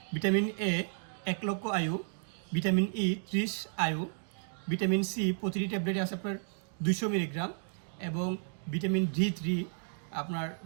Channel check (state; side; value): silent; left; digital silence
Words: ভিটামিন এ 1 লক্ষ আয়ু, ভিটামিন ই 30 আয়ু, ভিটামিন সি প্রতিটি ট্যাবলেটে আছে আপনার 200 মিলিগ্রাম এবং ভিটামিন D3 আপনার